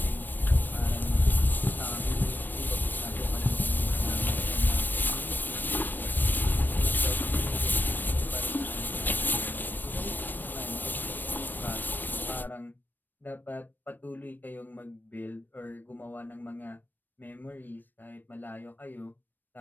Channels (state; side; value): late; right; 0.091 ms